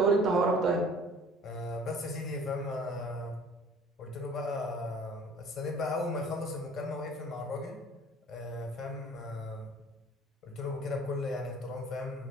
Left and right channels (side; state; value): both; normal; correlation 0.49